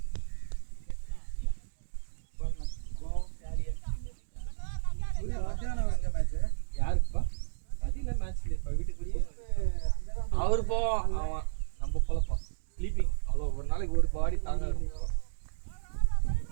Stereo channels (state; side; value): silent; left; digital silence